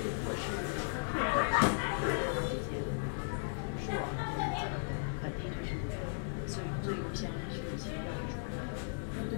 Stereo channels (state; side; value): silent; right; digital silence